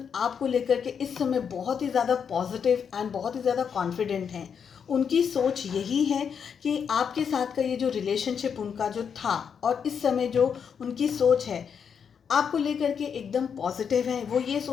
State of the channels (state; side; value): quieter; right; 7.1 dB